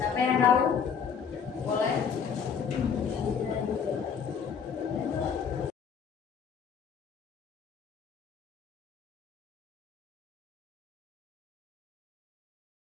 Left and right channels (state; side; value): quieter; right; 6.8 dB